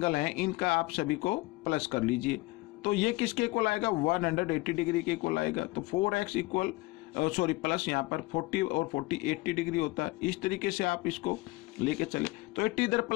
हैं इनका आप सभी को प्लस कर लीजिए, तो ये किसके इक्वल आएगा? 180 डिग्री के इक्वल आएगा। तो 4x इक्वल प्लस यहाँ पर 40 और 40 80 डिग्री होता है। इस तरीके से आप इसको लेके चले तो 80 इधर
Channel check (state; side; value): quieter; right; 21.8 dB